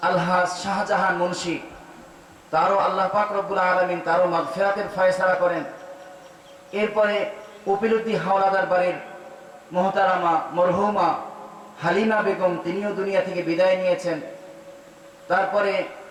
আলহাজ শাহজাহান মুন্সি, তারও আল্লাহ পাক রব্বুল আলামিন তারও মাগফিরাতের ফয়সালা করেন। এরপরে কপিলউদ্দিন হাওলাদার বাড়ির মোহতারামা মরহুমা হালিমা বেগম, তিনিও দুনিয়া থেকে বিদায় নিয়েছেন। তারপরে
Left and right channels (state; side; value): identical; both; correlation 1.00